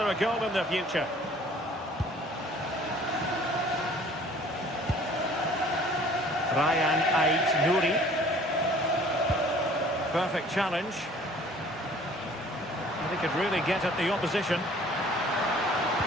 a goal in the future? Ryan Ait-Nouri. Perfect challenge. He could really get at the opposition.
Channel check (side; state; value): both; normal; correlation 0.52